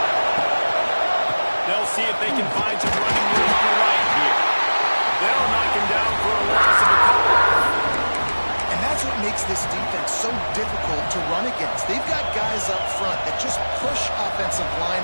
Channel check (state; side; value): inverted; both; correlation -1.00